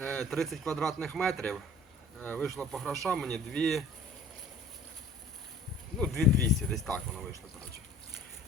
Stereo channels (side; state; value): both; normal; correlation 0.49